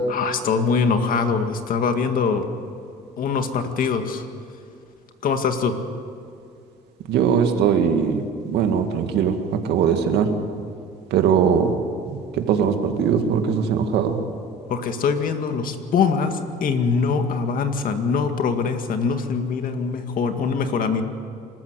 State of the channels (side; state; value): both; normal; correlation 0.37